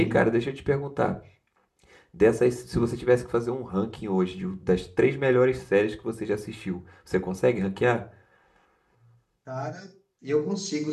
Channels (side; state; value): both; identical; correlation 1.00